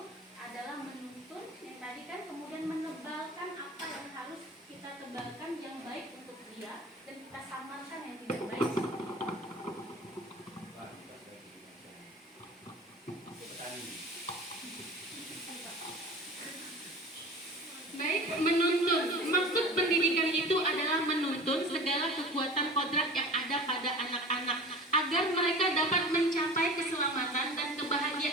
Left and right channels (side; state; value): both; normal; correlation 0.38